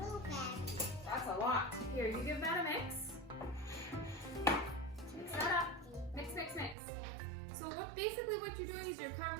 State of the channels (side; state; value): left; drops out; at 6.8 s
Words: That's a lot. Here, you give that a mix. Mix that up. Mix, mix, mix. So basically what you're doing is you're